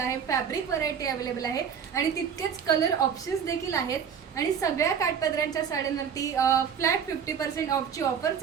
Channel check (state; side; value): quieter; left; 7.5 dB